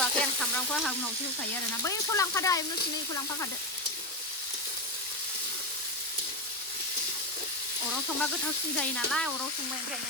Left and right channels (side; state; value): both; normal; correlation 0.12